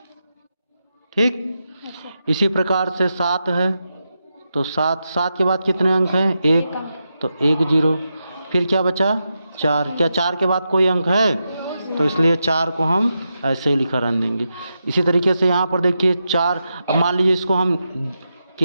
ठीक, इसी प्रकार से 7 है, तो 7 के बाद कितने अंक हैं? 1, तो 1 0। फिर क्या बचा? 4। क्या 4 के बाद कोई अंक है? तो इसलिए 4 को हम ऐसे ही लिखा रहने देंगे। इसी तरीके से यहाँ पर देखिए 4, अब मान लीजिए इसको हम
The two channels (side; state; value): both; inverted; correlation -0.87